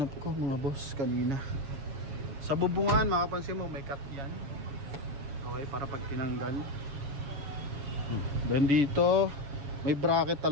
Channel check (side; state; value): left; late; 7.3 ms